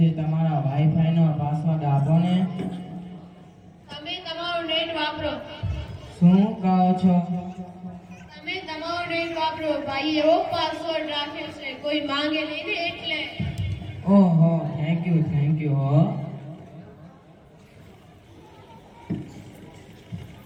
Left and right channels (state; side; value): identical; both; correlation 1.00